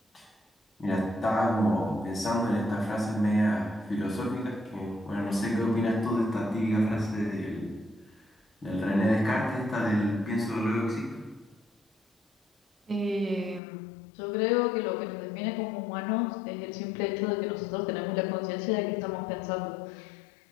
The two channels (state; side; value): drops out; right; at 13.6 s